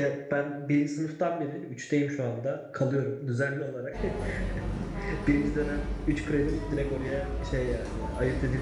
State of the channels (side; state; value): both; identical; correlation 1.00